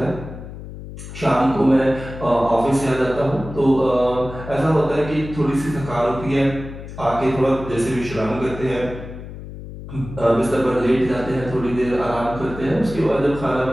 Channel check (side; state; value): left; noise; hum, 12 dB below the sound